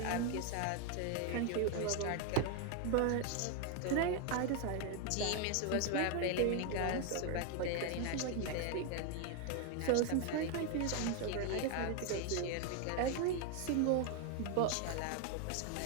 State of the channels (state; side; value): different; both; correlation 0.01